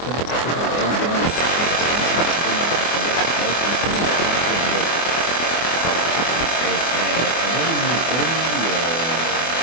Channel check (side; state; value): right; late; 24 ms